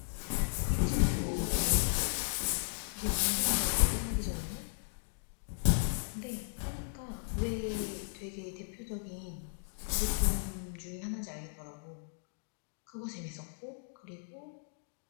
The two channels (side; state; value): right; silent; digital silence